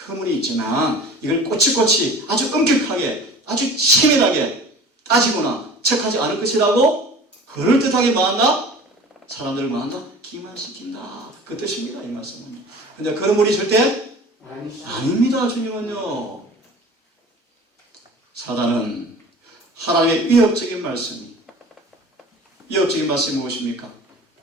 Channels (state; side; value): normal; both; correlation 0.41